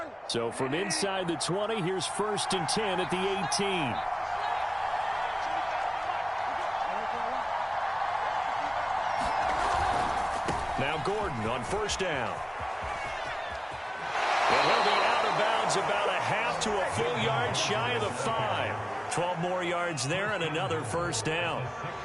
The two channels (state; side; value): identical; both; correlation 1.00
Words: So from inside the 20, here's 1st and 10 at the 18. Now Gordon on 1st down. And he'll be out of bounds about a half to a full yard shy of the 5. 12 more yards there and another first down.